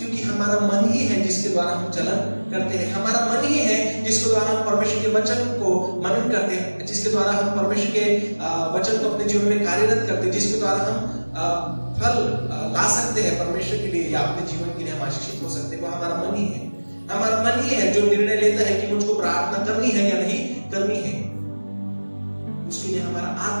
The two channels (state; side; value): inverted; both; correlation -1.00